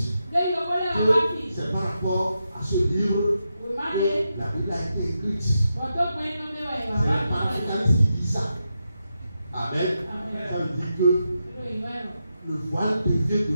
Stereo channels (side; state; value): both; inverted; correlation -0.87